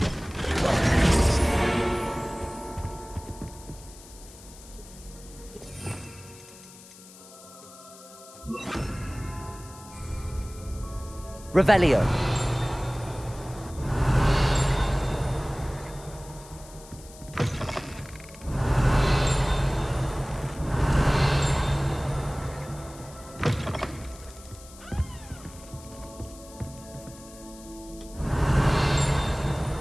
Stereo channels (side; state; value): left; noise; hiss, 20 dB below the sound